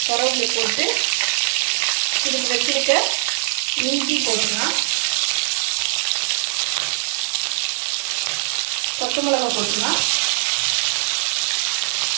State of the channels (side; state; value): left; silent; digital silence